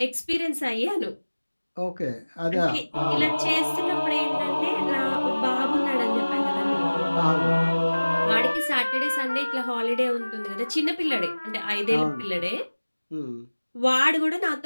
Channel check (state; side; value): inverted; both; correlation -1.00